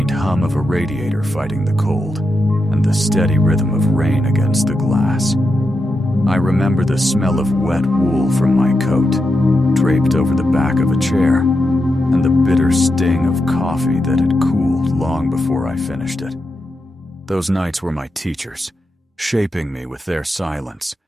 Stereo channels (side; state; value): both; normal; correlation 0.87